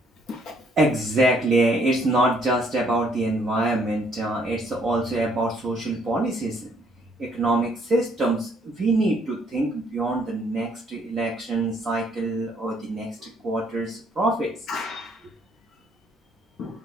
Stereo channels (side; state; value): both; normal; correlation 0.66